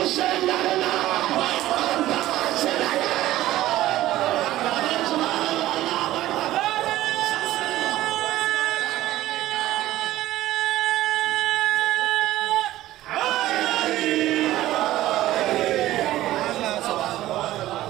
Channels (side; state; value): left; quieter; 15.1 dB